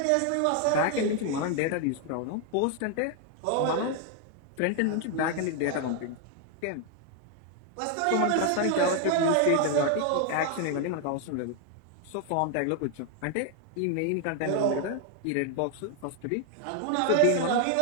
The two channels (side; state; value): both; different; correlation 0.00